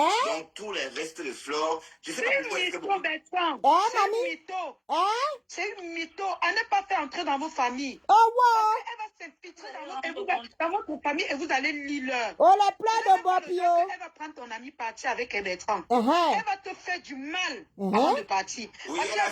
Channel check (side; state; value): both; identical; correlation 1.00